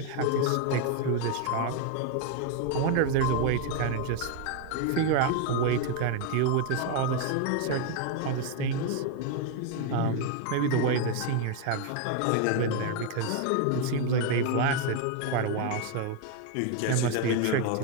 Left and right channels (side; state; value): both; different; correlation 0.01